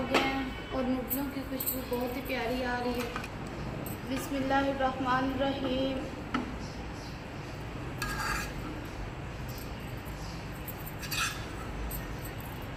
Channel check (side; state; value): both; identical; correlation 1.00